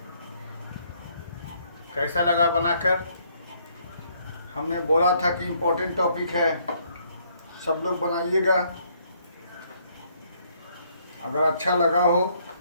कैसा लगा बनाकर? हमने बोला था कि इम्पोर्टेंट टॉपिक है, सब लोग बनाइएगा। अगर अच्छा लगा हो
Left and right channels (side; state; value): both; inverted; correlation -0.68